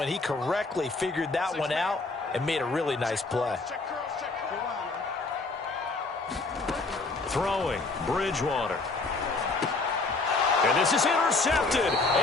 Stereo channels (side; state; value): right; quieter; 3.6 dB